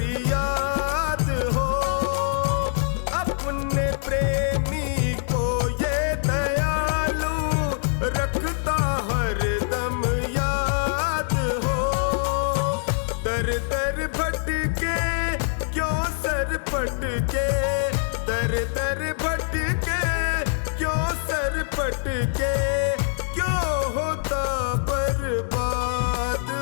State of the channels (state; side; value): silent; right; 61 dB below the other